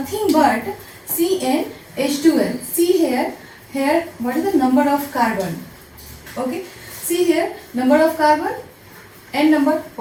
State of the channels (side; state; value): both; identical; correlation 1.00